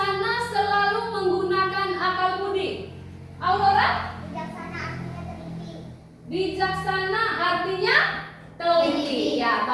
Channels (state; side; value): identical; both; correlation 1.00